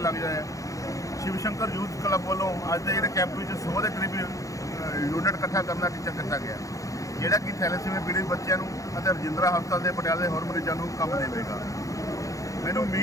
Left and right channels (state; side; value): late; right; 0.16 ms